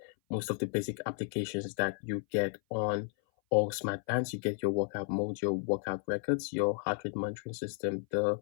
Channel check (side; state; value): right; silent; 56 dB below the other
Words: most of the basic applications that you get on all smart bands. You get your workout mode, your workout records, your heart rate monitoring system, the